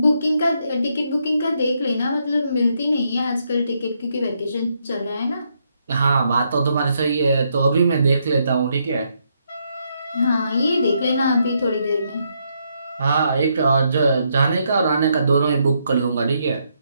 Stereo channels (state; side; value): inverted; both; correlation -0.76